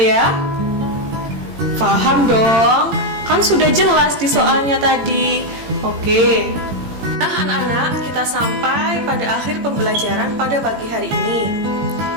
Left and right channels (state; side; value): late; left; 18 ms